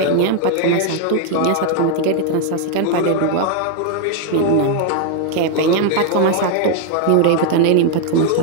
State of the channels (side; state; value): both; different; correlation 0.00